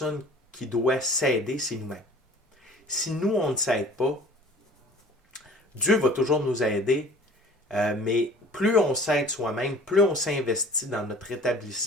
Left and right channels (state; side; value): normal; both; correlation 0.47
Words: qui doit s'aider, c'est nous-mêmes. Si nous, on ne s'aide pas, Dieu va toujours nous aider, mais plus on s'aide soi-même, plus on s'investit dans notre